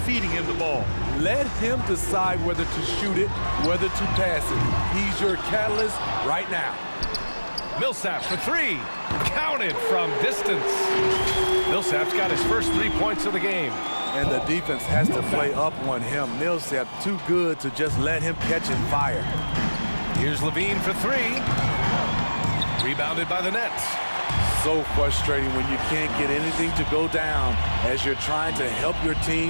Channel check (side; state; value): both; inverted; correlation -1.00